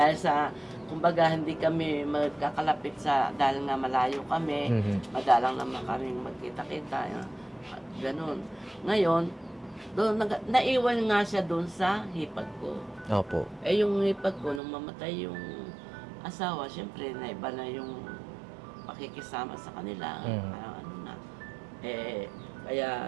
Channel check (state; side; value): drops out; left; at 14.6 s